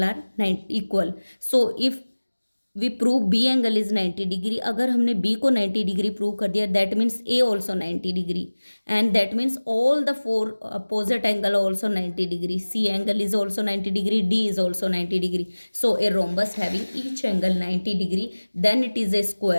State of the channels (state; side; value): inverted; both; correlation -1.00